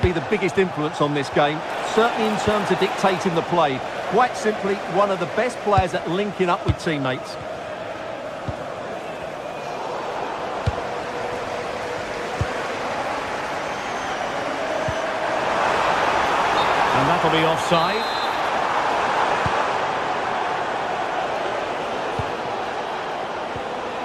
be the biggest influence on this game, certainly in terms of dictating the play. Quite simply, one of the best players at linking up with teammates. And that'll be offside.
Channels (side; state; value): both; identical; correlation 1.00